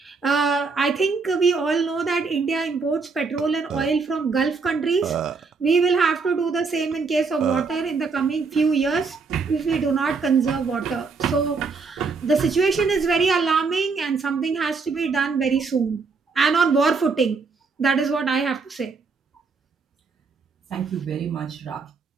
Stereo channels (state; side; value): quieter; left; 4.6 dB